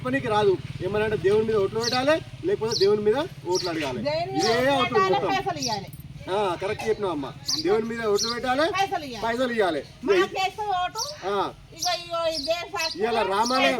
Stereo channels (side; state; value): both; identical; correlation 1.00